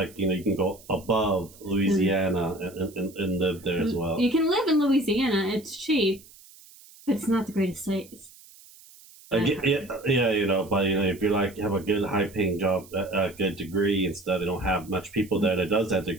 can go above Louisiana and live there as well. You can live in Louisiana; it's cheap, but it's not the greatest state. But if you're like have a good high-paying job, a good degree, and stuff, they don't have much people there that does that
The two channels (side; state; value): right; noise; hiss, 23 dB below the sound